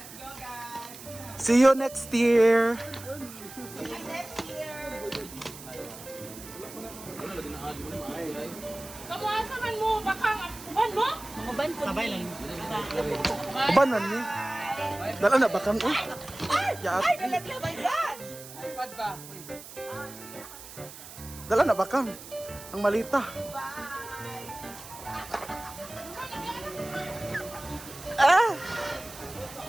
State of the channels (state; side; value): noise; right; hiss, 15 dB below the sound